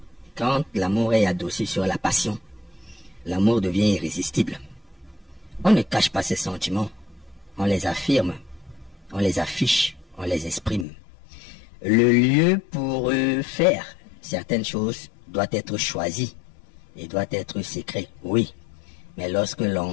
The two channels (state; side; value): drops out; right; at 10.9 s